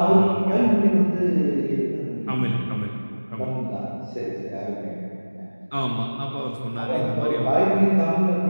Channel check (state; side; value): inverted; both; correlation -1.00